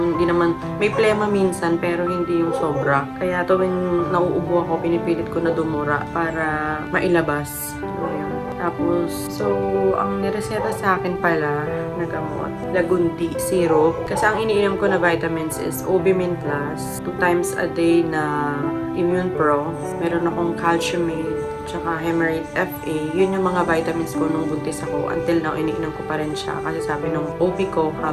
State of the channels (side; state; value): both; identical; correlation 1.00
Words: hindi naman, may plema minsan, pero hindi yung sobra. Kaya tuwing nauubo ako, pinipilit ko na dumura para mailabas. Ayun. Tapos, so, ang nireseta sa akin pala na gamot, Lagundi syrup. Kasi ang iniinom ko na vitamins is Obimin Plus, 2 times a day na Immune Pro. Meron akong Calciumate, tsaka Hemerate FA. Yun yung mga vitamins ko nung buntis ako. Until now, iniinom ko pa rin siya. Kasi sabi nung OB ko,